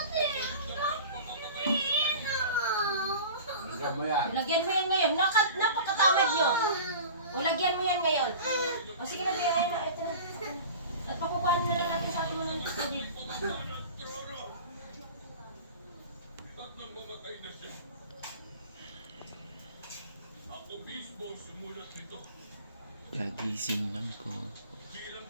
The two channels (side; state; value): both; inverted; correlation -0.37